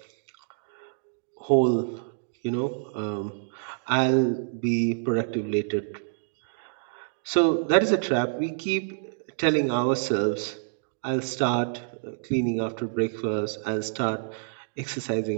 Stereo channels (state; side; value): silent; left; digital silence